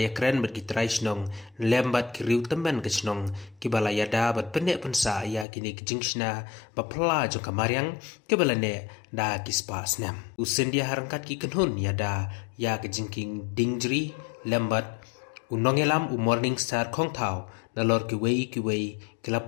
keren bat ki trai snong lembat ki riu temban kesnong ki bala yada bat pendek pensa ya kini ke jingshna ba pla jong kamaryang ki bala ne da ki spa snam Scindia harangkat ki kenhun yada ya ke Jingkieng Diengjri lembat unongelam morning star khong thau nalor ki wei kila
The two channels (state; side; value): drops out; right; at 5.5 s